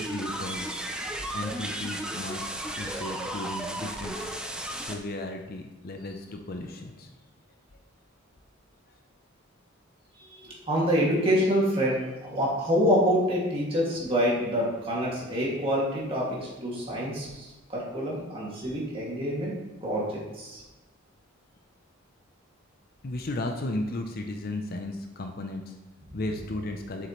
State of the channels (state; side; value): normal; both; correlation 0.44